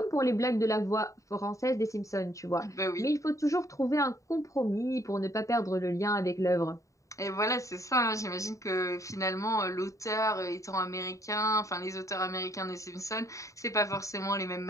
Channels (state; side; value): late; right; 0.16 ms